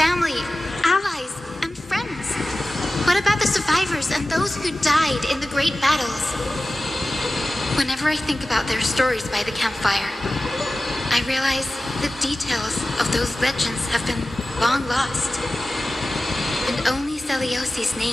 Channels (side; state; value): both; normal; correlation 0.96